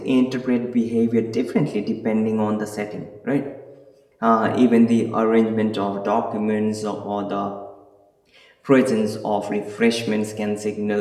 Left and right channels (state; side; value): identical; both; correlation 1.00